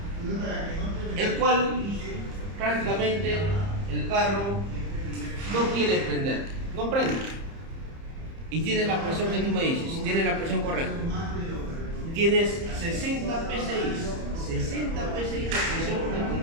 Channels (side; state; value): left; late; 30 ms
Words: el cual prácticamente el carro no quiere prender, no prende, y tiene la presión que tú me dices, tiene la presión correcta, tienes 60 PSI, 60 PSI de presión de